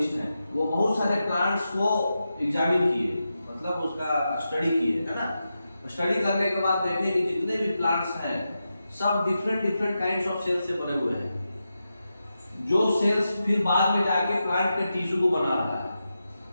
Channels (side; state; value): both; inverted; correlation -0.89